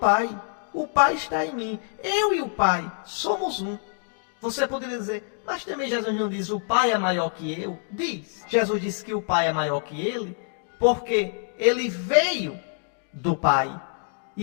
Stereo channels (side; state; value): right; silent; 61 dB below the other